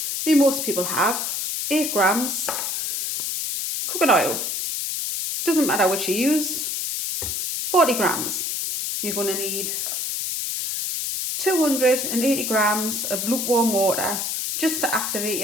most people have. 8 grams. Cooking oil, doesn't matter which you use. 40 grams. You're going to need 280 grams of lukewarm water just to activate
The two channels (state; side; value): noise; left; hiss, 2 dB below the sound